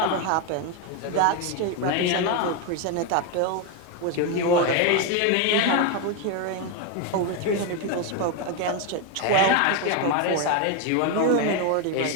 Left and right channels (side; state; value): both; different; correlation 0.02